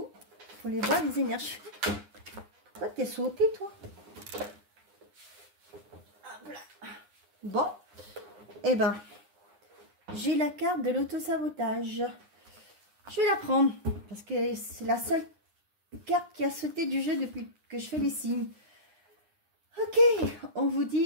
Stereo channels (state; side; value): late; left; 9.8 ms